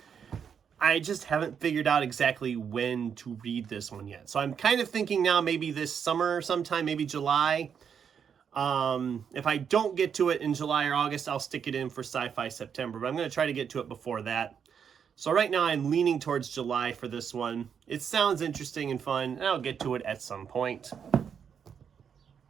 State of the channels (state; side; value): quieter; left; 7.4 dB